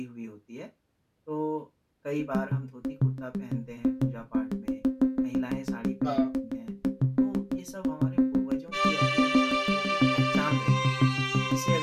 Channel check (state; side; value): identical; both; correlation 1.00